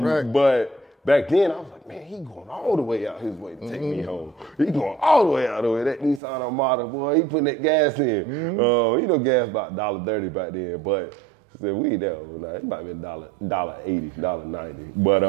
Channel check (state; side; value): drops out; left; at 6.2 s